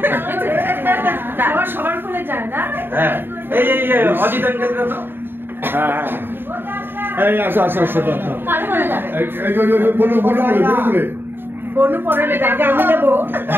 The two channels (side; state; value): left; late; 0.10 ms